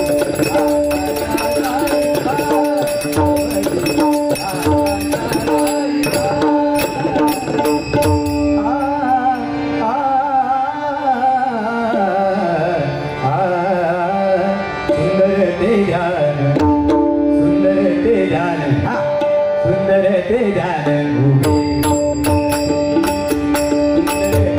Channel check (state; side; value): identical; both; correlation 1.00